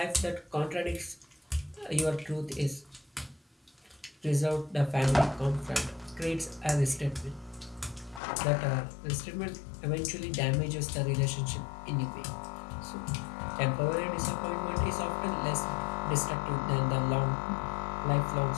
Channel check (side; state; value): right; drops out; at 8.2 s